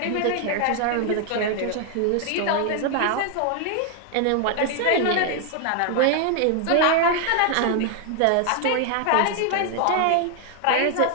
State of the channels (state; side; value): different; both; correlation 0.00